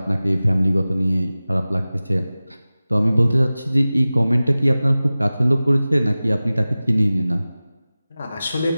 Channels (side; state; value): both; inverted; correlation -0.97